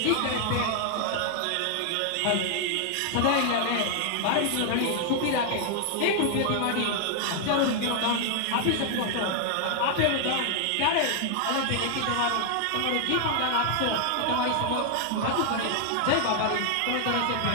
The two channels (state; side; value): different; both; correlation 0.00